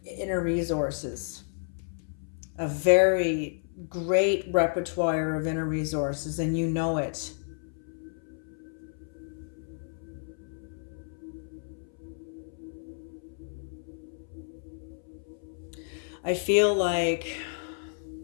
inner resources, a very great repertoire of inner resources, and you know it. I feel like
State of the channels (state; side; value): silent; right; 57 dB below the other